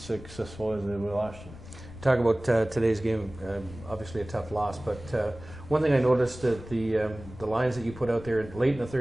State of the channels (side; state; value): left; noise; rumble, 15 dB below the sound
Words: successful as they were last year. Talk about today's game, obviously a tough loss, but one thing I noticed that the lines that you put out there late in the